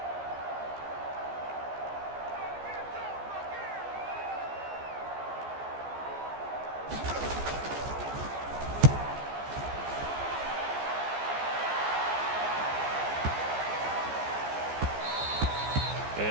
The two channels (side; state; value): left; late; 14 ms